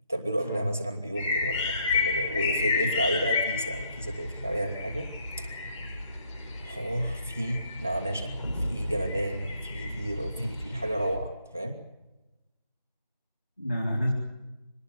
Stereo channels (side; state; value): both; inverted; correlation -0.71